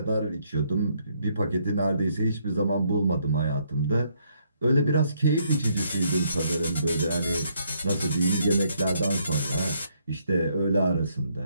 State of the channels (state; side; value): inverted; both; correlation -0.71